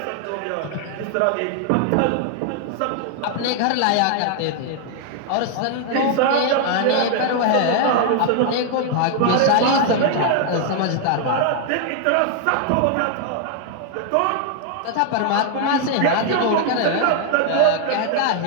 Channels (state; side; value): different; both; correlation 0.00